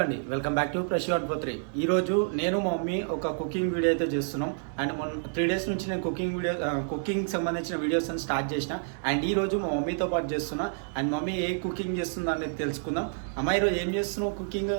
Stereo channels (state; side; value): silent; left; digital silence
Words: అండి, welcome back to Prashanth పోత్రి. ఈరోజు నేను మా మమ్మీ ఒక కుకింగ్ వీడియో అయితే చేస్తున్నాం. అండ్ మొన్న 3 days నుంచి నేను కుకింగ్ సంబంధించిన వీడియోస్ అని స్టార్ట్ చేసిన. అండ్ ఈ రోజు మా మమ్మీతో పాటు చేస్తున్నా. అండ్ మమ్మీ ఏ కుకింగ్ చేస్తుందో అనేది తెలుసుకుందాం. అమ్మ, ఈరోజు ఏం చేస్తున్నావు కుకింగ్?